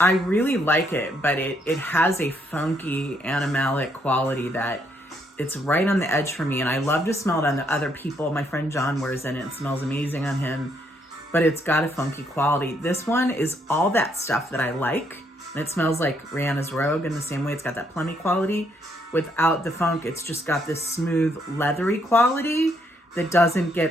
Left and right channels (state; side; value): normal; both; correlation 0.72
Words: I really like it, but it has a funky animalic quality that it's right on the edge for me, and I love to smell it on the other people. My friend John wears it, and it smells amazing on him, but it's got a funky quality. This one is all that stuff that I like, and it smells like Rihanna's Rogue in the same way. It's got that plummy quality without the funk. It's just got this smooth, leathery quality that doesn't